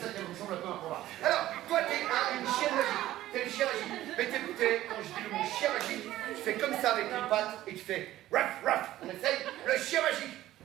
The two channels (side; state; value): left; quieter; 14.5 dB